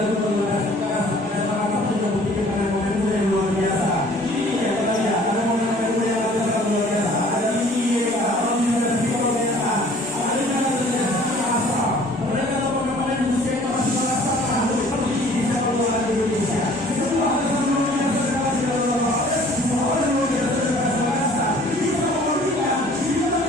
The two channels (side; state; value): both; normal; correlation 0.53